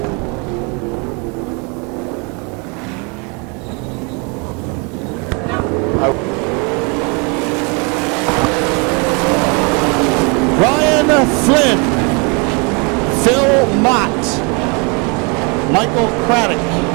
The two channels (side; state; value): left; quieter; 32.3 dB